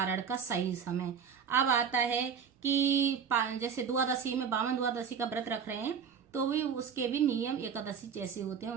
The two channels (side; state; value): left; quieter; 7.0 dB